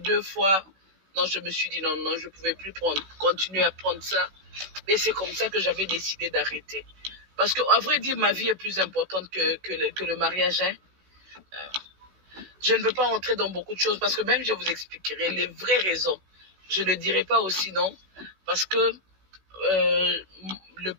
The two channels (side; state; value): left; late; 16 ms